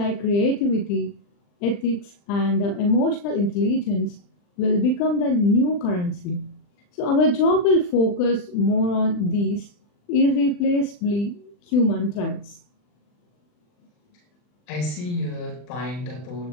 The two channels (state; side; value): late; right; 40 ms